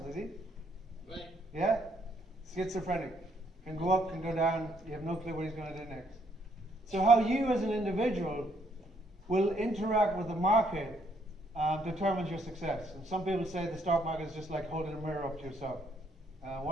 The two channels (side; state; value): both; normal; correlation 0.70